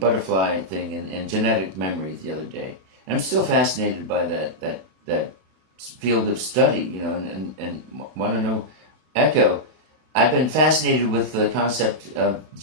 butterfly thing and genetic memory the other day. And I'm still fascinated by that field of study, and want to know, Echo, I've been fascinated with the concept of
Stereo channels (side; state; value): left; late; 32 ms